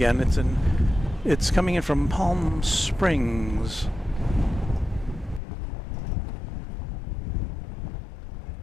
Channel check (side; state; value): right; drops out; at 5.4 s